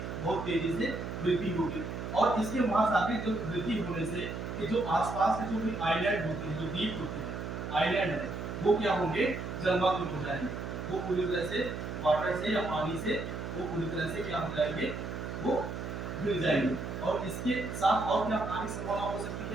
बहुत तेजी से वृद्धि होगी, और इसके महासागरीय जो वृद्धि होने से कि जो आसपास के जो भी आइलैंड होते हैं, जो द्वीप होते हैं, आइलैंड है, वो क्या होंगे? जलमग्न हो जाएंगे, वो पूरी तरह से वाटर से या पानी से वो पूरी तरह से क्या हो जाएंगे? वो गिर जाएंगे। और इसके साथ और क्या आने की संभावना हो सकती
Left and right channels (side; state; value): right; noise; hum, 6 dB below the sound